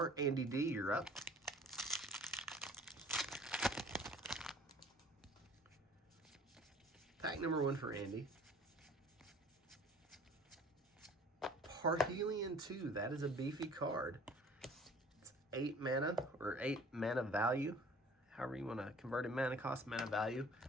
Andy D, you're up. Pack number 1 for Andy. Parhelion 2, that is a beefy card. It's 8 mana, or 8 mana value. However you want to convert a mana cost, mana value.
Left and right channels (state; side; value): normal; both; correlation 0.49